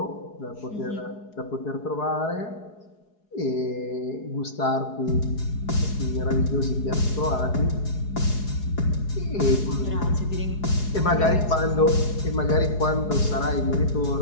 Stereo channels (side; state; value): right; late; 4.8 ms